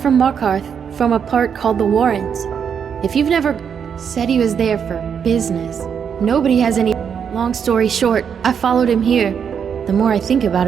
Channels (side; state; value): left; quieter; 7.4 dB